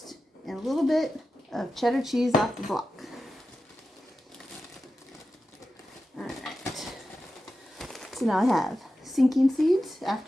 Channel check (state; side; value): normal; both; correlation 0.92